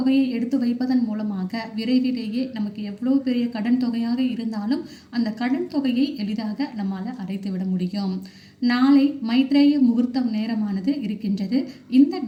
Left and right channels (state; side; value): identical; both; correlation 1.00